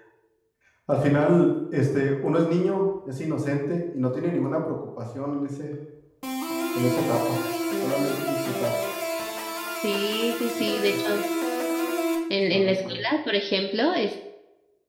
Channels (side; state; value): both; identical; correlation 1.00